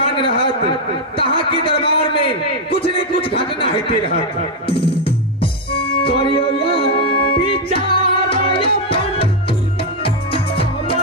रहत तहाँ के दरबार में कुछ न कुछ घटना होते रहत। करियो या विचार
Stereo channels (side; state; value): both; normal; correlation 0.02